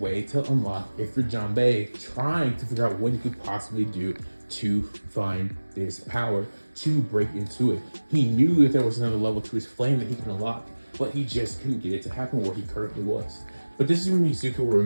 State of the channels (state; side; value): inverted; both; correlation -1.00